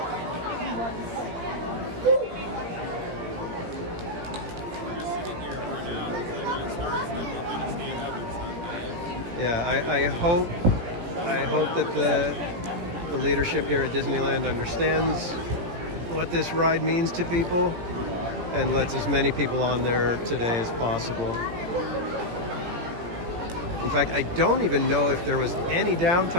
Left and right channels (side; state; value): left; late; 17 ms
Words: Yeah, I hope that the leadership here at Disneyland understands what this ride means to people and lets as many people on there today as possible. In fact, I don't even know if there was any